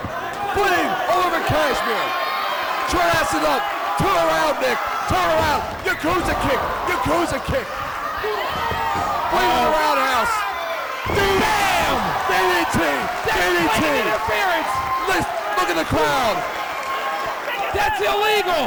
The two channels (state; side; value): identical; both; correlation 1.00